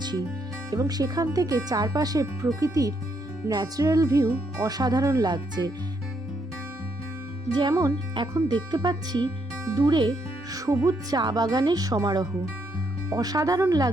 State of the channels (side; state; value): both; normal; correlation 0.75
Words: এবং সেখান থেকে চারপাশে প্রকৃতির ন্যাচারাল ভিউ অসাধারণ লাগছে। যেমন এখন দেখতে পাচ্ছি দূরে সবুজ চা বাগানের সমারোহ। অসাধারণ